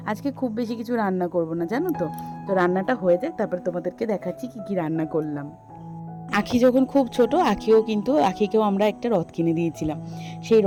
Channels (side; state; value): both; identical; correlation 1.00